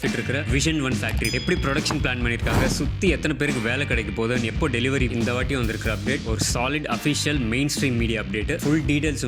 இருக்கிற விஷன் 1 ஃபேக்ட்ரி எப்படி ப்ரொடக்ஷன் பிளான் பண்ணியிருக்காங்க, சுற்றி எத்தனை பேருக்கு வேலை கிடைக்க போகுதுன்னு, எப்போ டெலிவரி, இந்த வாட்டி வந்திருக்கிற அப்டேட் ஒரு solid official mainstream media update. Full details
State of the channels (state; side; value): identical; both; correlation 1.00